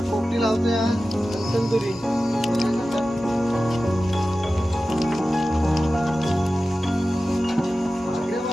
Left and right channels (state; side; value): normal; both; correlation 0.94